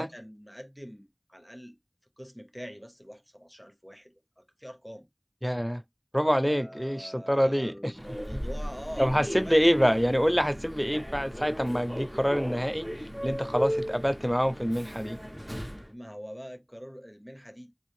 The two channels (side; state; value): both; identical; correlation 1.00